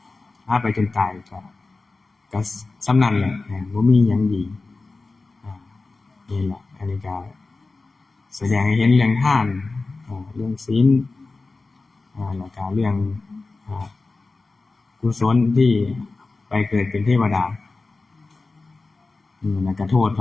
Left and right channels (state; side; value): quieter; right; 3.6 dB